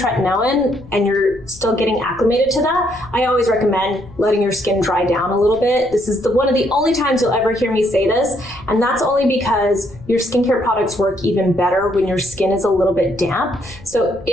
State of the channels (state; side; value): noise; left; rumble, 20 dB below the sound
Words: and you're still getting acclimated to that, I always recommend letting your skin dry down a little bit. This is one of the only times you'll ever hear me say this, and that's only because your skincare products work even better when your skin is a little bit damp. So